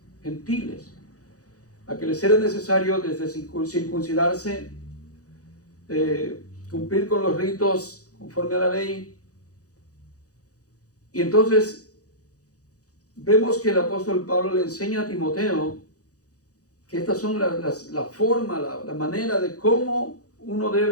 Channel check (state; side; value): late; right; 0.67 ms